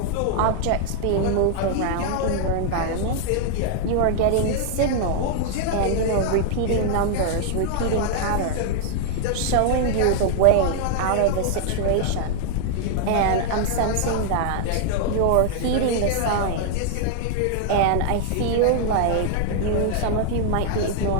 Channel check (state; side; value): different; both; correlation -0.01